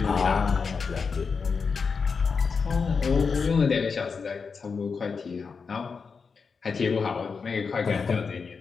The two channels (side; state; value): right; quieter; 5.3 dB